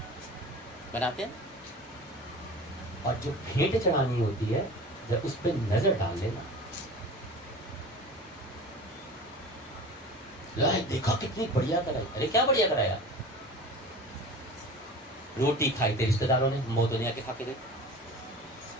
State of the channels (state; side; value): normal; both; correlation 0.37